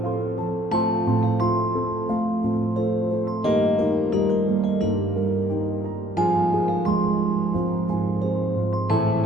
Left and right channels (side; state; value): both; normal; correlation 0.62